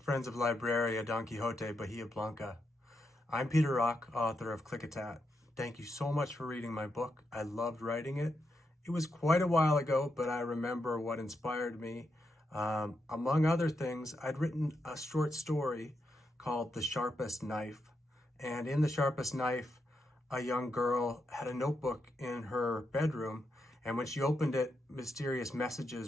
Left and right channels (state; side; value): normal; both; correlation 0.83